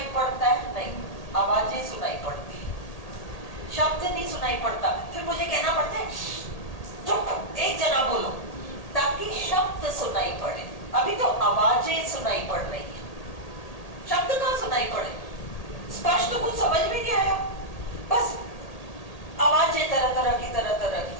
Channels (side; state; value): right; late; 1.8 ms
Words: पड़ता है? नहीं, आवाजें सुनाई पड़ती है, शब्द नहीं सुनाई पड़ता। फिर मुझे कहना पड़ता है चुप, एक जना बोलो, ताकि शब्द सुनाई पड़े। अभी तो आवाजें सुनाई पड़ रही है, शब्द कहाँ सुनाई पड़े? स्पष्ट तो कुछ समझ में नहीं आया, बस आवाजें तरह तरह